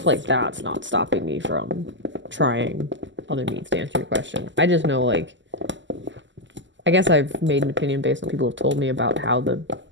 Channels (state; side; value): late; left; 0.54 ms